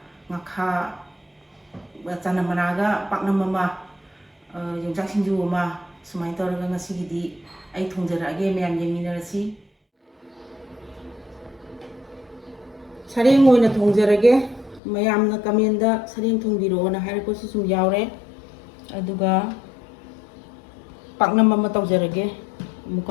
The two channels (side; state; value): right; drops out; at 14.8 s